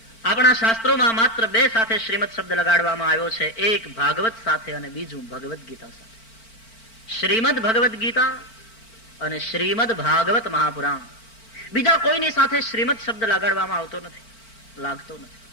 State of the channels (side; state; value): right; late; 4.4 ms